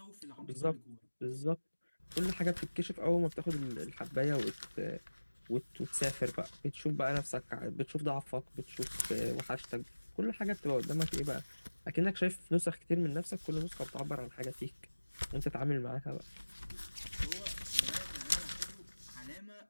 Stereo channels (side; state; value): both; inverted; correlation -1.00